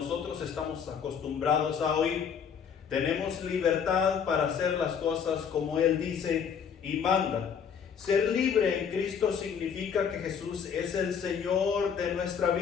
estamos acostumbrados a oír. Tenemos libertad para hacer las cosas como Él dice y manda. Ser libre en Cristo significa que Jesús es el Señor de nuestra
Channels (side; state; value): right; quieter; 7.2 dB